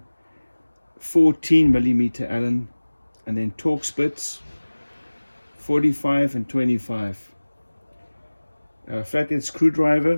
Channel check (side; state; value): both; inverted; correlation -1.00